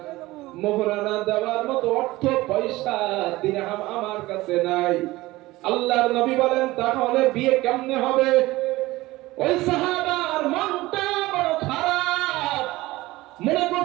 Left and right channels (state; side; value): quieter; left; 18.9 dB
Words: মোহরানা দেওয়ার মতো অর্থ পয়সা দিরহাম আমার কাছে নাই। আল্লাহর নবী বলেন তাহলে বিয়ে কেমনে হবে? ওই সাহাবার মনটা বড় খারাপ, মনে